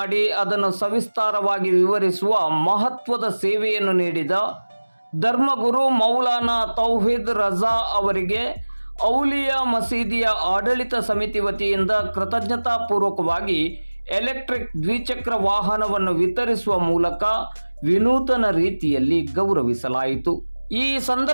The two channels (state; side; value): inverted; both; correlation -1.00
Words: ಅದನ್ನು ಸವಿಸ್ತಾರವಾಗಿ ವಿವರಿಸುವ ಮಹತ್ವದ ಸೇವೆಯನ್ನು ನೀಡಿದ ಧರ್ಮಗುರು ಮೌಲಾನಾ ತೌಹೀದ್ ರಜಾ ಅವರಿಗೆ ಔಲಿಯಾ ಮಸೀದಿಯ ಆಡಳಿತ ಸಮಿತಿ ವತಿಯಿಂದ ಕೃತಜ್ಞತಾಪೂರ್ವಕವಾಗಿ ಎಲೆಕ್ಟ್ರಿಕ್ ದ್ವಿಚಕ್ರ ವಾಹನವನ್ನು ವಿತರಿಸುವ ಮೂಲಕ ವಿನೂತನ ರೀತಿಯಲ್ಲಿ ಗೌರವಿಸಲಾಯಿತು. ಈ